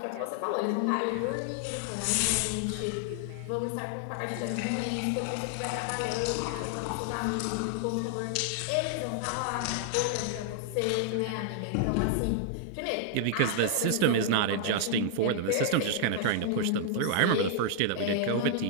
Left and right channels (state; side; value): different; both; correlation 0.00